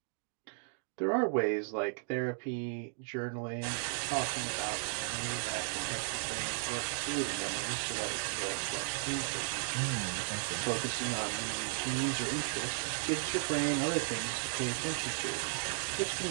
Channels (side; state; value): left; silent; 54 dB below the other